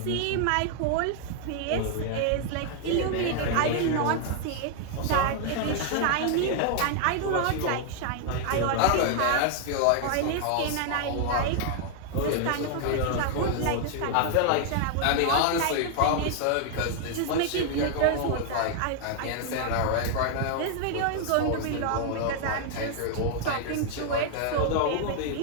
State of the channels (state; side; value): different; both; correlation 0.00